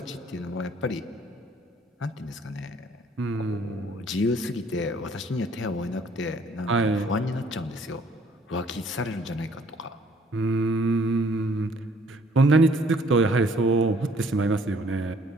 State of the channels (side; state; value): both; normal; correlation 0.60